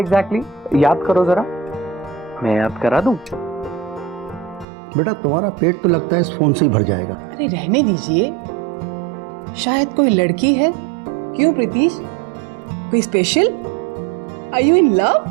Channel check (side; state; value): left; drops out; at 4.7 s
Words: याद करो जरा। मैं याद करा दूं? बेटा तुम्हारा पेट तो लगता है इस फोन से ही भर जाएगा। अरे रहने दीजिए, शायद कोई लड़की है। क्यों प्रीतिश, कोई special? Are you in love?